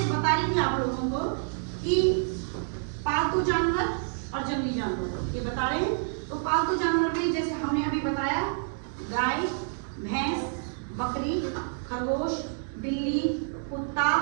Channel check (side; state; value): left; silent; digital silence